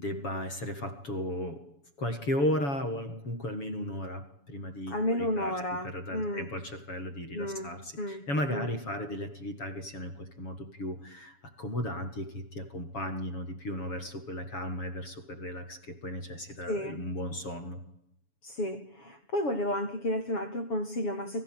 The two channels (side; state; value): right; late; 7.1 ms